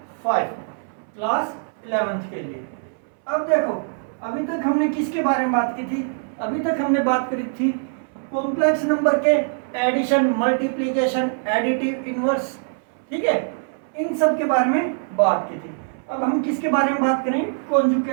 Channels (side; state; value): left; silent; 64 dB below the other